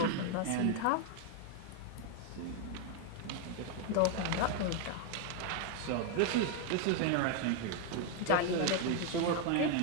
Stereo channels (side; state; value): both; different; correlation 0.01